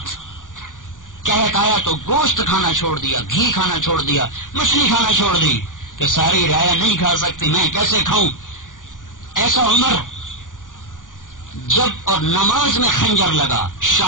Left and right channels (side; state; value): right; late; 0.88 ms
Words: کہت آیا تو گوشت کھانا چھوڑ دیا، گھی کھانا چھوڑ دیا، مچھلی کھانا چھوڑ دی کہ ساری رعایا نہیں کھا سکتی میں کیسے کھاؤں. ایسا عمر جب اور نماز میں خنجر لگا،